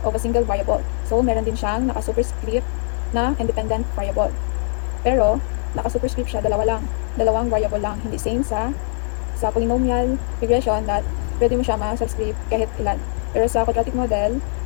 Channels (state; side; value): silent; right; digital silence